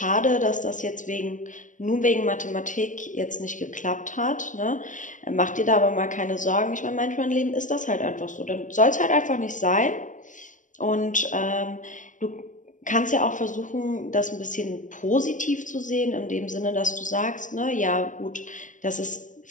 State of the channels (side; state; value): right; late; 0.37 ms